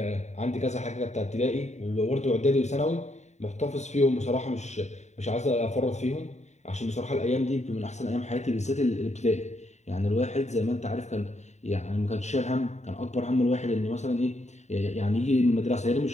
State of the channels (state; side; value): late; right; 0.33 ms